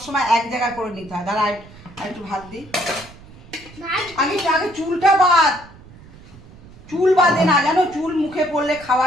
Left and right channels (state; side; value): noise; right; rumble, 21 dB below the sound